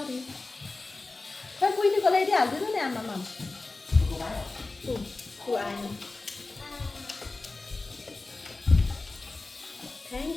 खोइ बुझ्नुको ल्याइदिइहाल्दिनु नि आमामा। आएन। थ्याङ्क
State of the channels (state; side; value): quieter; right; 3.4 dB